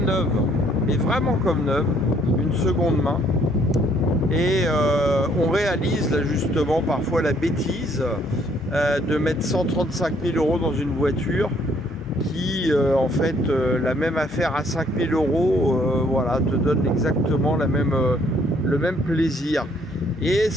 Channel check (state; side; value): normal; both; correlation 0.65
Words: neuve. Mais vraiment comme neuve, une seconde main. Et on réalise là justement parfois la bêtise de mettre 135 000 € dans une voiture qui en fait la même affaire à 5 000 €, voilà, te donne exactement le même plaisir. Et